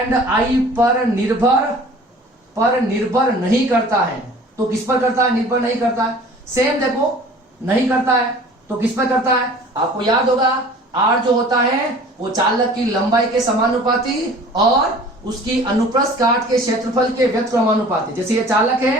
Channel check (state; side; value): normal; both; correlation 0.46